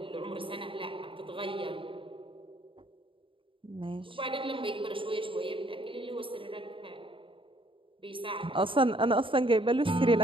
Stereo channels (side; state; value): left; late; 0.25 ms